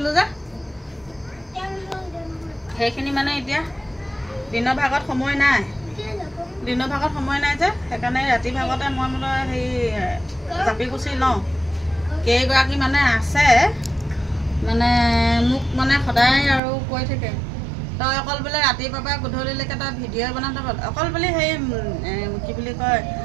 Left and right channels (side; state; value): left; drops out; at 16.6 s